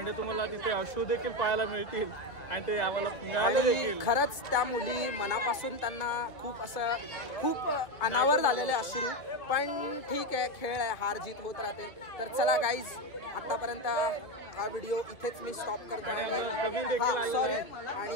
तुम्हाला तिथे अश्रू देखील पाहायला मिळतील आणि ते आम्हाला आणि खरंच त्या मुली मनापासून त्यांना खूप अनावर झालेले अश्रू, पण ठीक आहे, खेळ आहे, हार जीत होत राहते। तर चला गाईज, आतापर्यंत हा व्हिडिओ इथेच मी स्टॉप करतो आणि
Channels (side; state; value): right; late; 2.2 ms